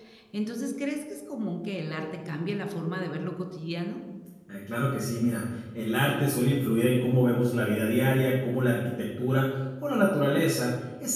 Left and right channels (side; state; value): both; identical; correlation 1.00